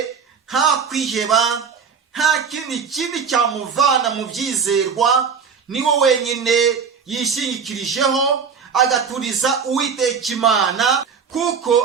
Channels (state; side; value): quieter; left; 6.2 dB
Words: nta kwiheba, nta kindi kibi cyamuvana mu byizerwa. Niwe wenyine yishingikirijeho, agaturiza Uwiteka Imana,